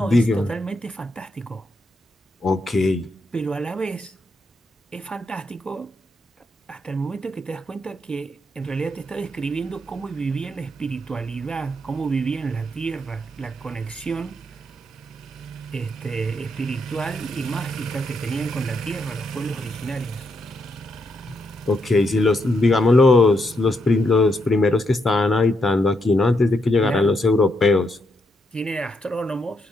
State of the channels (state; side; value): normal; both; correlation 0.80